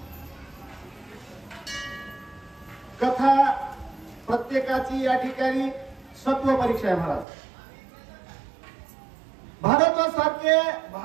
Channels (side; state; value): left; drops out; at 7.2 s